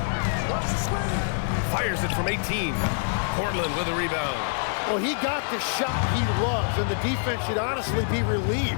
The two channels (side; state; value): right; silent; digital silence